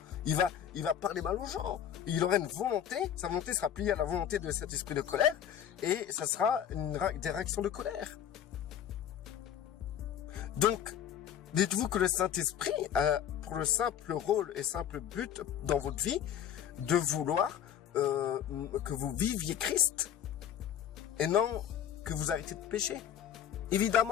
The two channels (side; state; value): right; quieter; 9.7 dB